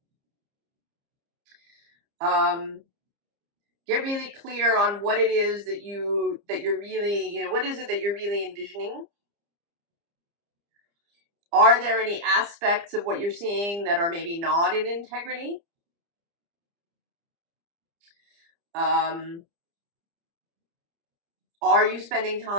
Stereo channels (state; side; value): late; left; 30 ms